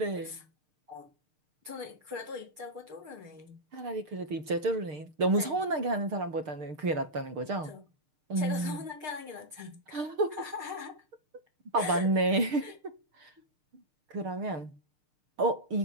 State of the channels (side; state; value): left; late; 6.6 ms